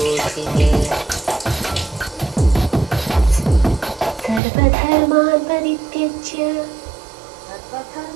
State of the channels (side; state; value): left; drops out; at 4.4 s